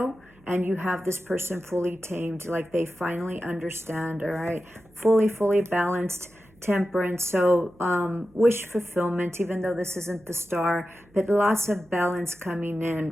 and you have this person fully tamed, like they finally understand, all right? Fully balanced. Temperance, so wish fulfillment, even though this isn't the star, but lots of balance coming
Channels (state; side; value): noise; right; hum, 29 dB below the sound